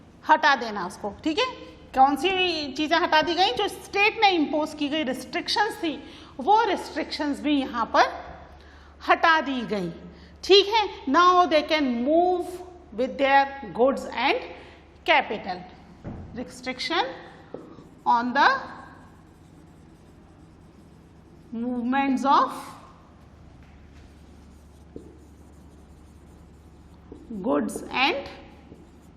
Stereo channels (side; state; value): both; identical; correlation 1.00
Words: हटा देना उसको। ठीक है, कौन सी चीजें हटा दी गई? जो स्टेट ने इम्पोज की गई रिस्ट्रिक्शंस थी, वो रिस्ट्रिक्शंस भी यहां पर हटा दी गई। ठीक है, now they can move with their goods and capital. Restriction on the movements of goods and